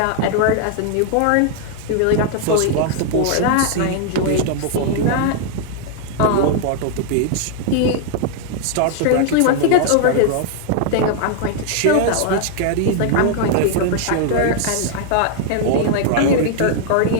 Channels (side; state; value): both; different; correlation 0.00